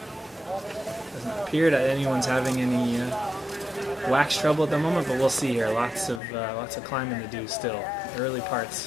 Doesn't appear that anyone's having any wax trouble at the moment, but we'll see here. Lots of climbing to do still. Early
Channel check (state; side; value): drops out; right; at 6.2 s